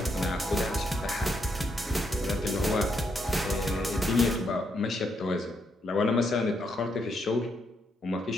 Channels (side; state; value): both; normal; correlation 0.77